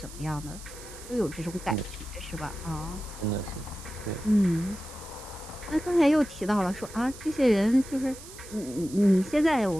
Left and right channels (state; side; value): noise; right; hiss, 16 dB below the sound